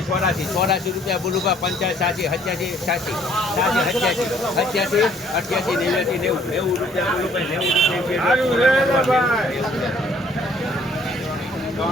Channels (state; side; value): normal; both; correlation 0.61